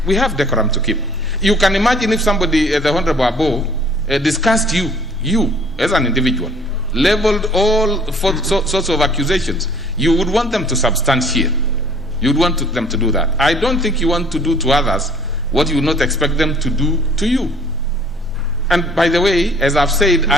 We have decorum to keep. You can imagine if somebody, the Honorable Abo, discussed you as an individual, leveled all sorts of accusations. You would want them to substantiate. You would want them to do that. I don't think you want to do to others what you would not expect them to do to you. And by the way, as I've said,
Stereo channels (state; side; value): normal; both; correlation 0.55